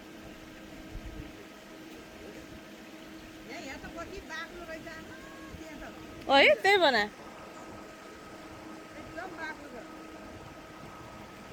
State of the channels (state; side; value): identical; both; correlation 1.00